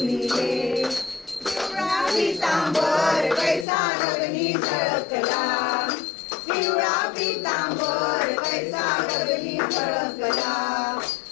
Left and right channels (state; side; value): drops out; right; at 3.7 s